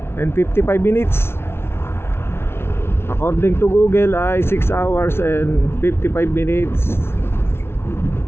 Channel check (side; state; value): right; late; 0.12 ms